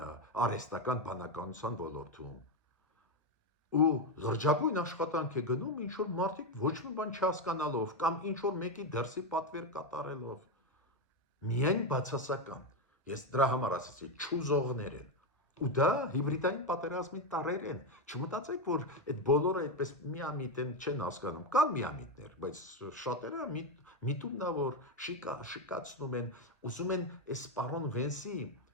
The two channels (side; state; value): both; normal; correlation 0.09